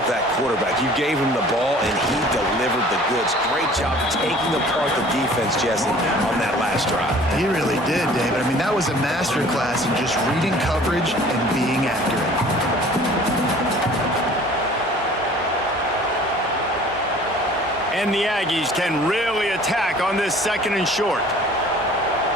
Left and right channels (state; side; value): normal; both; correlation 0.49